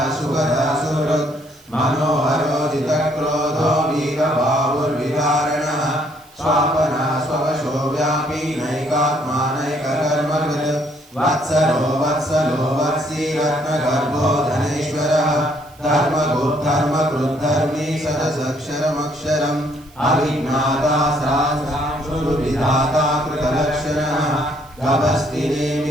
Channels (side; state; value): right; noise; hiss, 27 dB below the sound